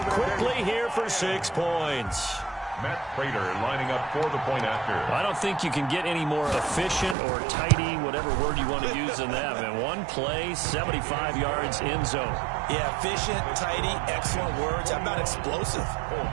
quickly here for 6 points. Matt Prater lining up for the point after. I don't think you can get any more efficient or tidy, whatever word you want to use in that. And one play, 75 yards in zone. Yeah, efficient, tidy, excellent words. How about explosive?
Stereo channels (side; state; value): left; drops out; at 7.2 s